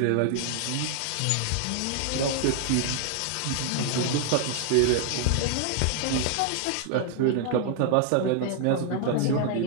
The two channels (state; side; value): different; both; correlation 0.00